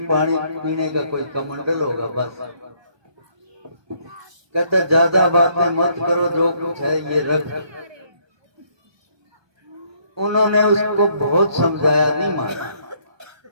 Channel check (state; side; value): late; left; 1.2 ms